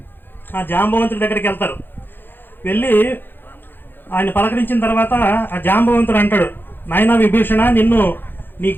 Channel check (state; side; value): late; right; 0.098 ms